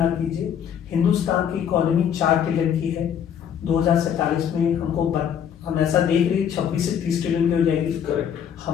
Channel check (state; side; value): quieter; right; 8.6 dB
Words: कीजिए। हिंदुस्तान की इकोनॉमी 4 ट्रिलियन की है, 2047 में हम ऐसा देख रहे हैं 26 से 30 ट्रिलियन की हो जाएगी। करेक्ट।